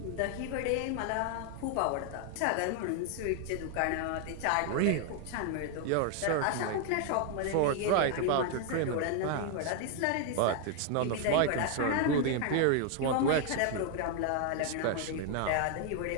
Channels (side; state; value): both; different; correlation 0.00